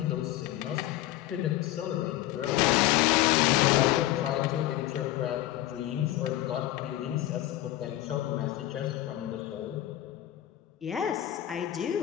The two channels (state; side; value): quieter; right; 14.6 dB